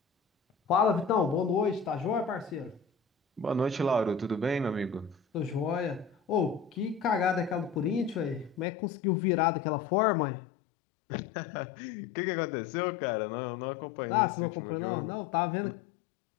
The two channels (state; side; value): drops out; right; at 8.7 s